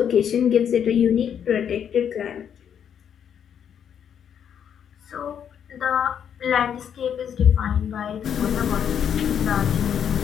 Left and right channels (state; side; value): quieter; right; 8.5 dB